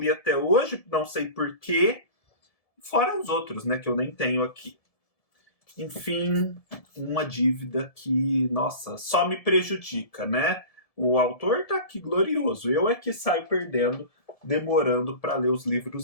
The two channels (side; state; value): right; late; 1.7 ms